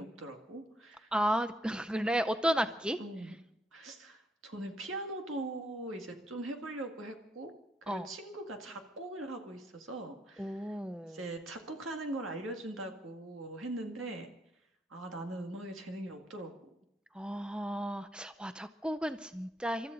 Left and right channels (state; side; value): normal; both; correlation 0.75